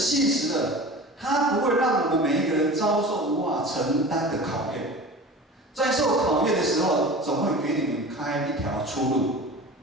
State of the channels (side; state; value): both; normal; correlation 0.36